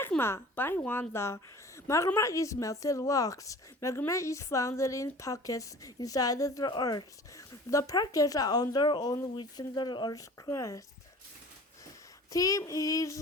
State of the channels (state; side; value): normal; both; correlation 0.43